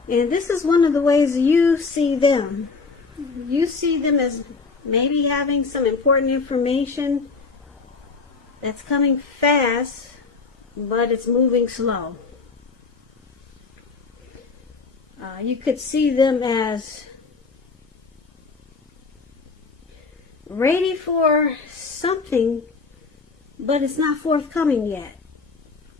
And this is one of the ways you see them. You see them as maybe having some important information that's coming fast, but it's moving slow. You could see them as ready for something, but it's not forthcoming yet.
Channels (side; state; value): right; quieter; 4.5 dB